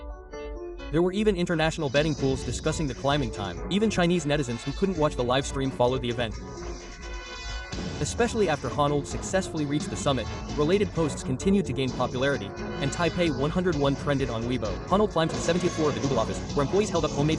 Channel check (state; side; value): identical; both; correlation 1.00